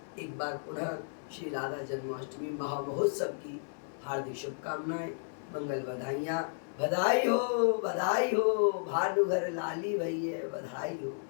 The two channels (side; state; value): right; silent; digital silence